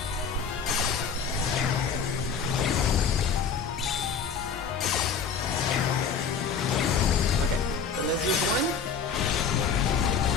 Okay, so let's use 1.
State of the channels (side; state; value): right; quieter; 6.1 dB